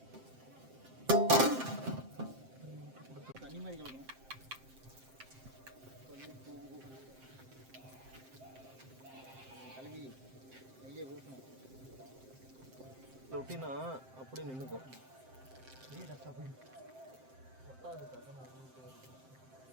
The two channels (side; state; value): left; late; 7.6 ms